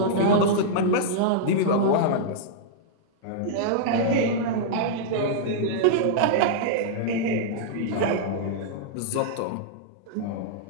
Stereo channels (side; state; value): both; different; correlation -0.02